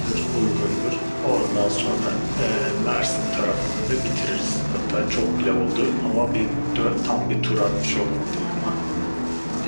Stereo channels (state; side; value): inverted; both; correlation -1.00